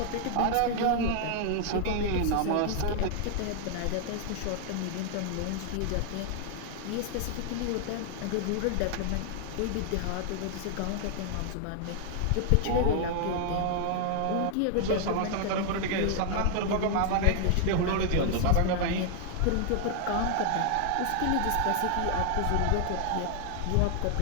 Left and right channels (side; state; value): both; different; correlation 0.00